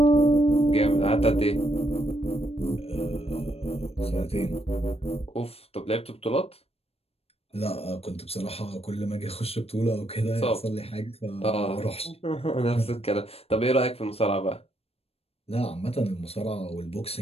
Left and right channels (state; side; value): late; right; 0.29 ms